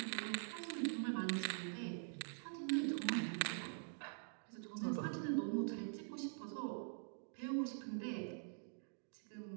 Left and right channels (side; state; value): left; silent; digital silence